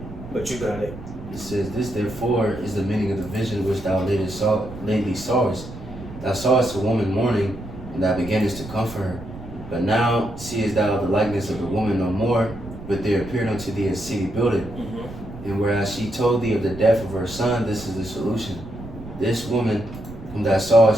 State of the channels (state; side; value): noise; right; rumble, 13 dB below the sound